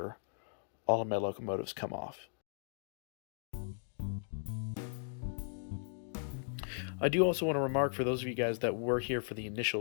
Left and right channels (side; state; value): right; silent; digital silence